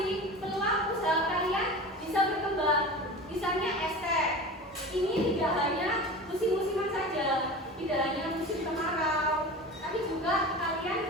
Peluang usaha kalian bisa berkembang. Misalnya es teh. Ini tidak hanya musim-musiman saja, tidak hanya musim kemarau, tapi juga kalian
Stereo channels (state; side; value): normal; both; correlation 0.33